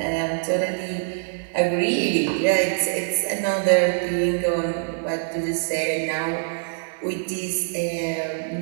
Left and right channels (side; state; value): left; silent; digital silence